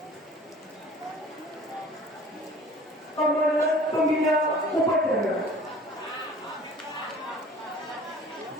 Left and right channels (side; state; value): both; normal; correlation 0.47